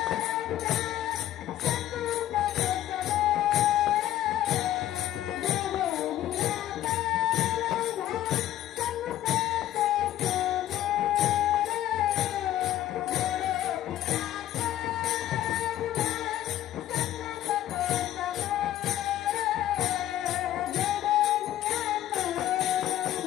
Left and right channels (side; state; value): right; quieter; 13.1 dB